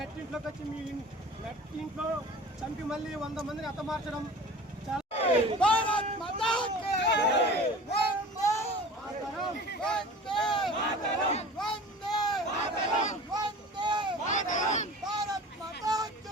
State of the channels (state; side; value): normal; both; correlation 0.40